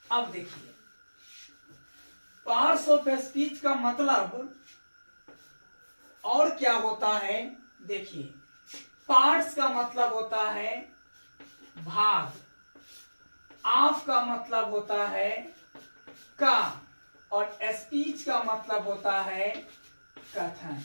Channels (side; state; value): both; inverted; correlation -1.00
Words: अब देखिए, पार्ट्स ऑफ स्पीच का मतलब और क्या होता है। देखिए, पार्ट्स का मतलब होता है भाग, ऑफ का मतलब होता है का, और स्पीच का मतलब होता है कथन।